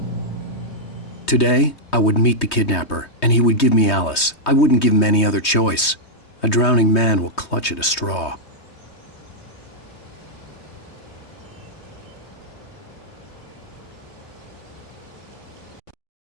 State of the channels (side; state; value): right; late; 3.2 ms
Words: Today, I would meet the kidnapper, and he would give me Alice. I wouldn't give him any other choice. A drowning man will clutch at a straw.